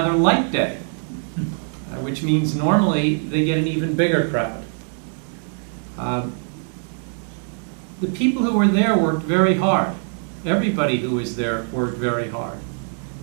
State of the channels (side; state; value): left; silent; 60 dB below the other